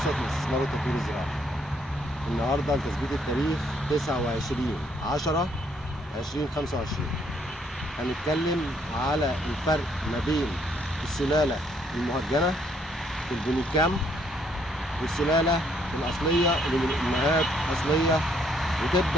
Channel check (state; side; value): normal; both; correlation 0.68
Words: لاستثمار والتطوير الزراعي. النهارده لتثبيت التاريخ 29/10/2025. هنتكلم على الفرق ما بين السلالة المهجنة في البونيكام والسلالة الأصلية اللي من أمهات أصلية،